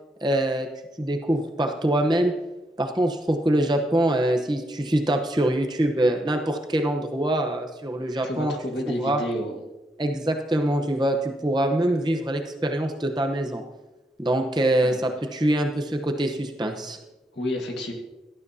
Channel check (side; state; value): both; normal; correlation 0.77